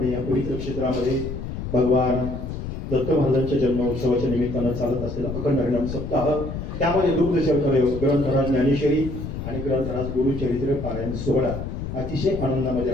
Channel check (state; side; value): noise; left; rumble, 6 dB below the sound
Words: या पवित्र क्षेत्रामध्ये भगवान दत्त महाराजांच्या जन्मोत्सवाच्या निमित्तानं चालत असलेला अखंड हरिनाम सप्ताह त्यामध्ये दुग्ध शर्करा ग्रंथराज ज्ञानेश्वरी आणि ग्रंथराज गुरुचरित्र पारायण सोहळा अतिशय आनंदामध्ये